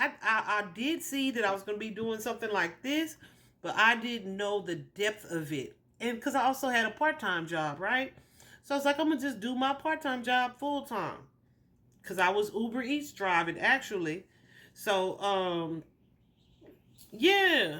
did see that I was going to be doing something like this, but I didn't know the depth of it. And because I also had a part-time job, right? So I was like, I'm going to just do my part-time job full-time. Because I was Uber Eats driving, actually. So,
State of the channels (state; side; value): identical; both; correlation 1.00